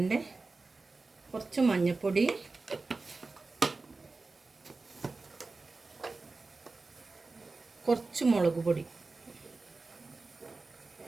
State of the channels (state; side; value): quieter; left; 3.7 dB